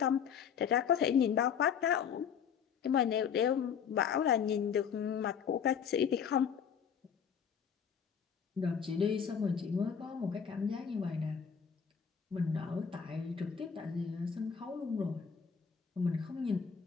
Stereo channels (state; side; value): quieter; right; 7.3 dB